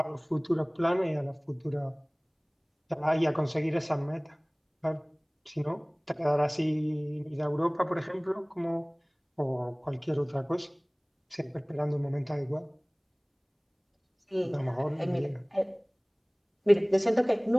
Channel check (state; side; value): identical; both; correlation 1.00